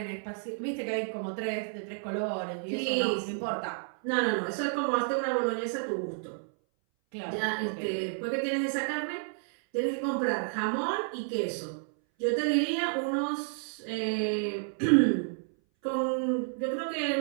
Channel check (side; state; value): left; silent; 57 dB below the other